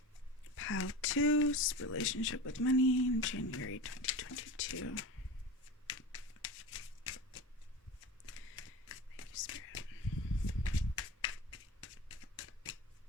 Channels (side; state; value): both; normal; correlation 0.30